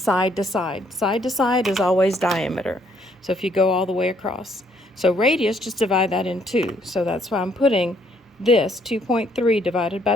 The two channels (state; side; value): normal; both; correlation 0.68